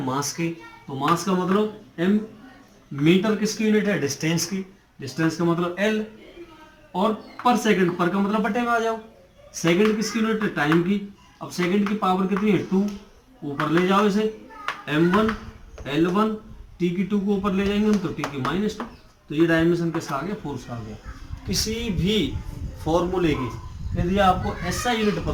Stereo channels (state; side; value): identical; both; correlation 1.00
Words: मास की, तो मास का मतलब m, मीटर किसकी यूनिट है, डिस्टेंस की, डिस्टेंस का मतलब l, और पर सेकंड, पर का मतलब बटे में आ जाओ, सेकंड किसकी यूनिट है, टाइम की। अब सेकंड की पावर कितनी है 2, ऊपर ले जाओ इसे, m1 L1 T की 2 को ऊपर ले जाएंगे हम तो T की -2, तो ये डायमेंशन किसका आ गया, फोर्स का आ गया। किसी भी फॉर्मूले की यदि आपको SI यूनिट